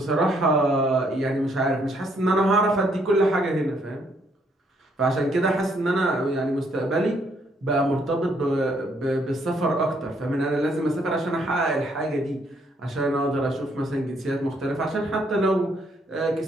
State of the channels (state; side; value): normal; both; correlation 0.70